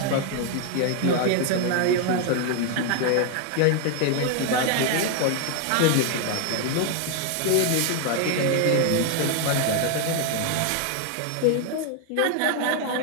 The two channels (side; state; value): both; different; correlation 0.01